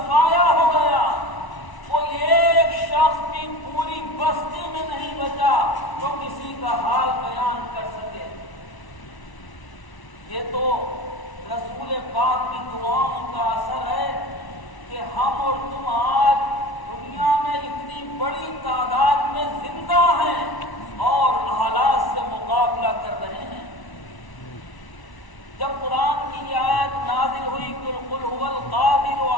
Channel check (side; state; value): right; late; 1.0 ms